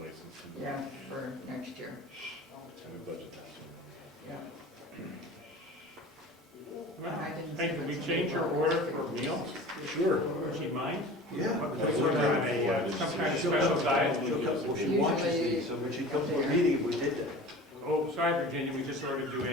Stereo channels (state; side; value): normal; both; correlation 0.39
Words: yeah, for next year, And we budget that. yeah. Well, hey, can we change your order for meals? Sure. Would she mind? Yeah. Because we're on a, some kind of special diet. Well, she watches these, so when she comes to a meeting, we did that. Oh, sorry, Virginia, we just ordered you